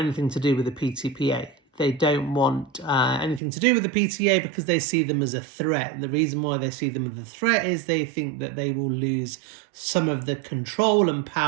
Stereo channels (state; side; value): drops out; left; at 3.4 s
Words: anything to do with the PTPA. They don't want anything to do with the PTA because they see them as a threat. The reason why they see them as a threat is they think that they will lose some of the control and